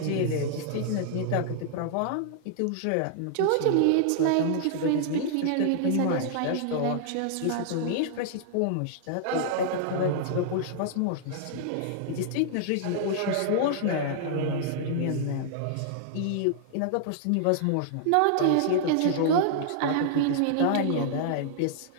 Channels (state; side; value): different; both; correlation -0.01